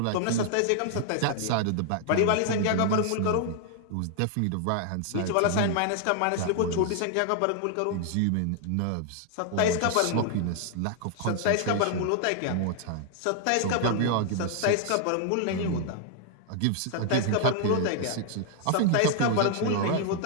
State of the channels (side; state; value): both; different; correlation 0.00